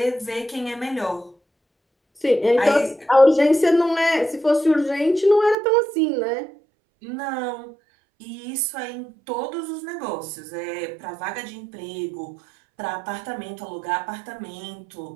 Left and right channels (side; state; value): left; drops out; at 5.6 s